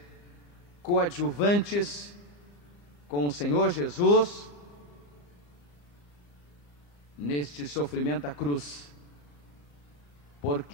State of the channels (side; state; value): right; late; 34 ms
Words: coadjuvantes com o Senhor Jesus neste sofrimento da cruz,